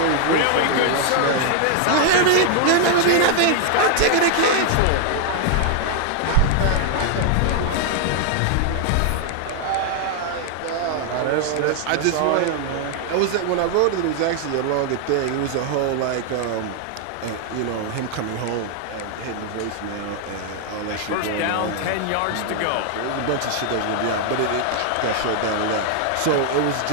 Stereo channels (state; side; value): different; both; correlation 0.00